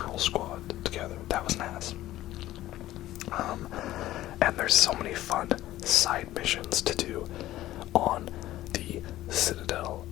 squad together. That was nice. And there's so many fun side missions to do on the Citadel.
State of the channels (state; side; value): quieter; right; 14.9 dB